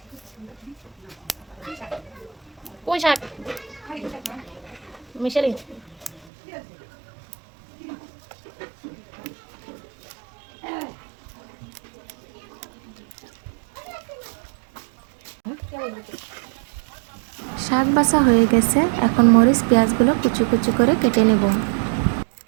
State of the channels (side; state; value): left; drops out; at 6.3 s